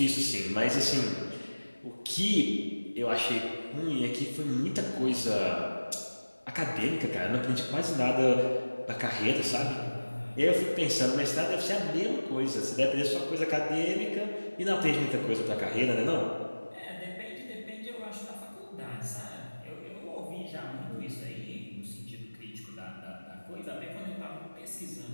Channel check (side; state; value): both; inverted; correlation -1.00